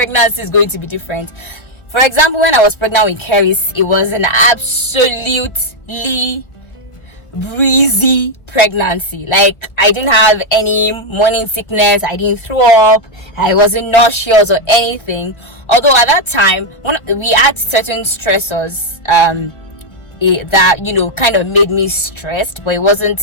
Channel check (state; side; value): late; right; 1.5 ms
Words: is going to be different. For example, when I was pregnant with Keris, it was an absolutely breezy pregnancy. Like, I didn't have any morning sickness, I didn't throw up, I wasn't nauseous or anything. Although at that time, we had certain stressors that kind of made me stressed, but it wasn't